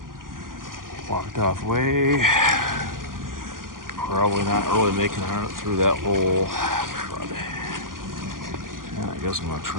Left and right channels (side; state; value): left; late; 0.91 ms